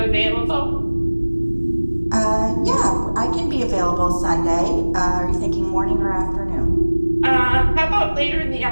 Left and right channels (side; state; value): both; inverted; correlation -1.00